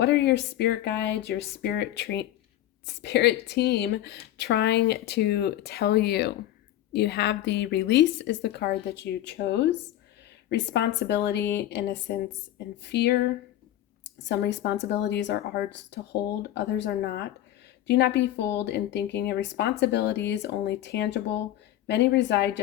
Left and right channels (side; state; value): right; quieter; 13.2 dB